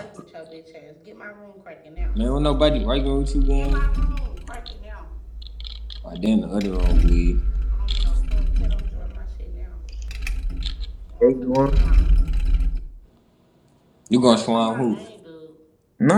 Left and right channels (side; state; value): both; identical; correlation 1.00